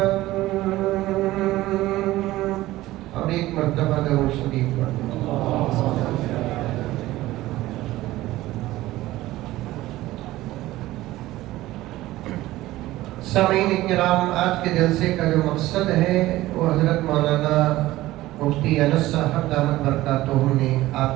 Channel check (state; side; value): quieter; left; 16.7 dB